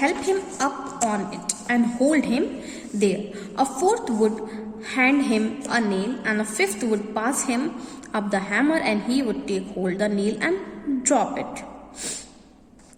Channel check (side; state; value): both; identical; correlation 1.00